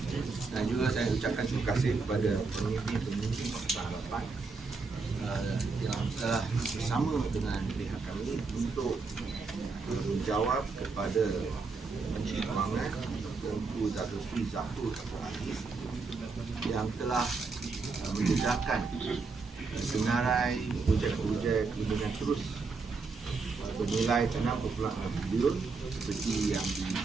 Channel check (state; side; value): quieter; left; 4.3 dB